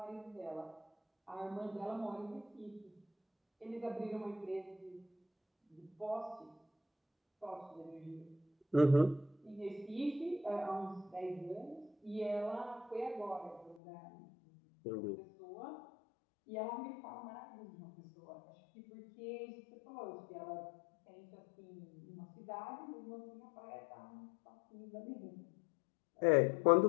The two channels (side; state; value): right; drops out; at 13.8 s